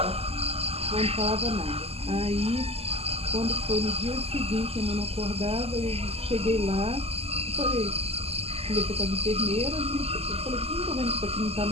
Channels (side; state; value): left; late; 0.29 ms